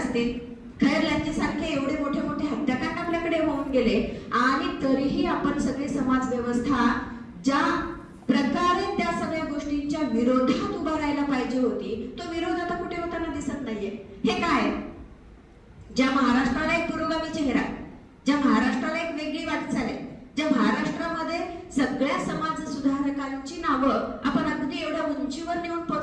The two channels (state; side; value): identical; both; correlation 1.00